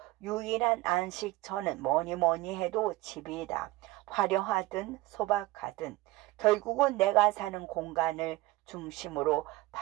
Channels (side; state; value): left; quieter; 19.2 dB